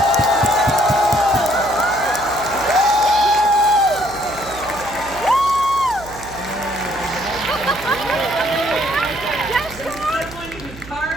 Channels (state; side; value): noise; right; hum, 17 dB below the sound